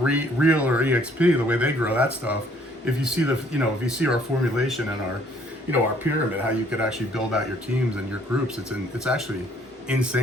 or EXP, the way they grow that stuff. If you see if you see our formulation and our pyramid, how you could actually build out your teams and your groups, it's actually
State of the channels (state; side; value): normal; both; correlation 0.62